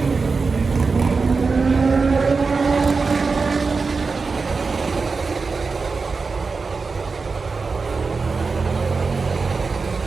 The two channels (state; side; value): quieter; left; 4.5 dB